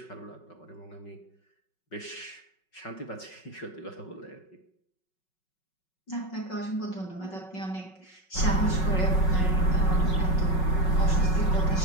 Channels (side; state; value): right; late; 5.4 ms